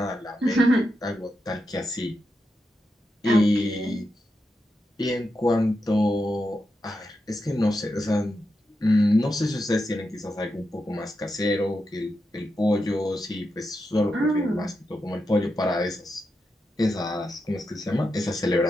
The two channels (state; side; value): normal; both; correlation 0.87